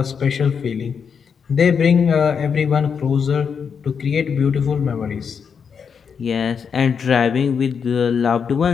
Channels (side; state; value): right; quieter; 6.6 dB